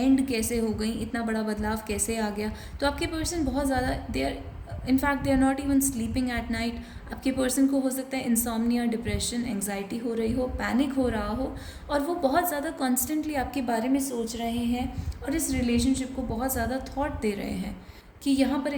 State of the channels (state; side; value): identical; both; correlation 1.00